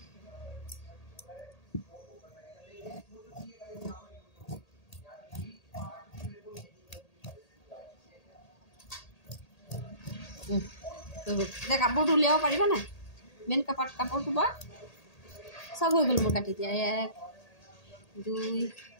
এতিয়া কাপোৰটো উলিয়াব পাৰিবা নাই? মেইন কাপোৰটো বা চব হৈ গ'ল মোৰ কাটি দিয়া। 1 2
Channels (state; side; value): late; right; 1.8 ms